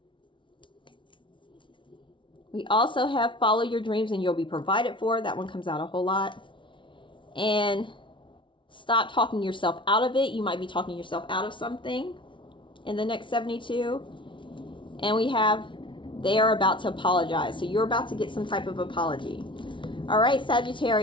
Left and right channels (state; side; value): late; right; 0.24 ms